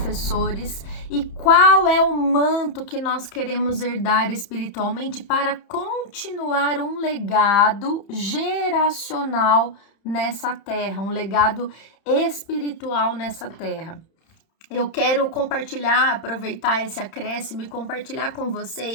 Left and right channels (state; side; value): late; right; 31 ms